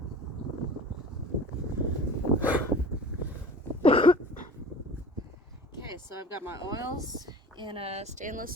Okay, so I've got my oils in a stainless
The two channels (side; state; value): both; normal; correlation 0.40